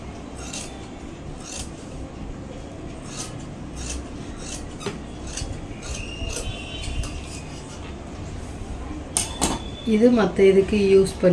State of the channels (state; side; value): identical; both; correlation 1.00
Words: இது மற்ற இதுக்கு யூஸ்